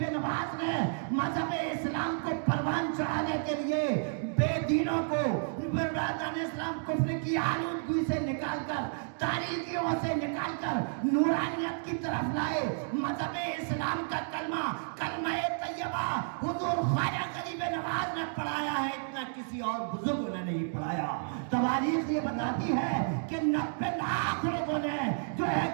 نواز نے مذہب اسلام کو پروان چڑھانے کے لیے بے دینوں کو برادران اسلام کفر کی آلودگی سے نکال کر، تاریکیوں سے نکال کر نورانیت کی طرف لائے، مذہب اسلام کا کلمہ طیبہ حضور خواجہ غریب نواز نے پڑھایا ہے، اتنا کسی اور بزرگ نے نہیں پڑھایا۔ تواریخ یہ بتاتی ہے کہ 90 لاکھ لوگوں نے جو ہے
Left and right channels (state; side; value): silent; left; digital silence